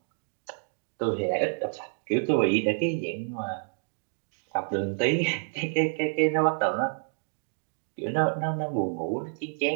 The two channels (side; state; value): left; silent; digital silence